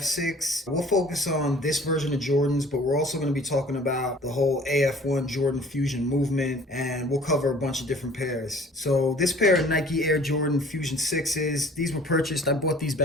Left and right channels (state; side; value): normal; both; correlation 0.51